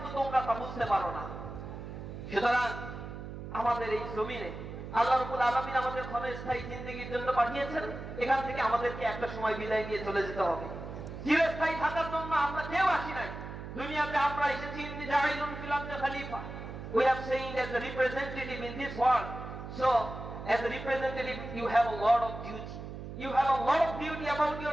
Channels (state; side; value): noise; right; hum, 9 dB below the sound